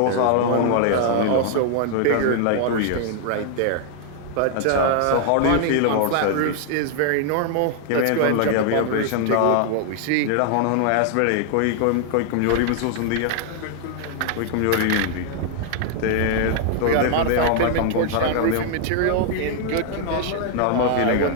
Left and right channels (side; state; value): both; different; correlation 0.00